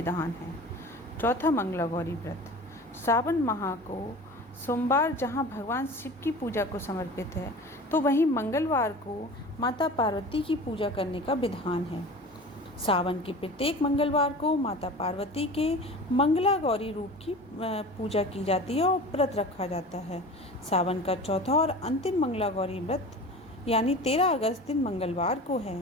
है। चौथा मंगला गौरी व्रत सावन माह को सोमवार जहां भगवान शिव की पूजा को समर्पित है, तो वहीं मंगलवार को माता पार्वती की पूजा करने का विधान है। सावन के प्रत्येक मंगलवार को माता पार्वती के मंगला गौरी रूप की पूजा की जाती है और व्रत रखा जाता है। सावन का चौथा और अंतिम मंगला गौरी व्रत यानी 13 अगस्त दिन मंगलवार को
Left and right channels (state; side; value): normal; both; correlation 0.37